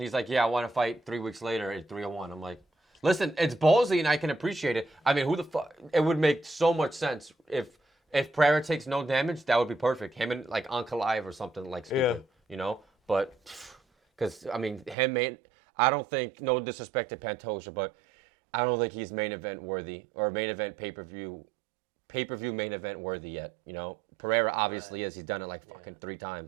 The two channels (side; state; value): left; drops out; at 15.0 s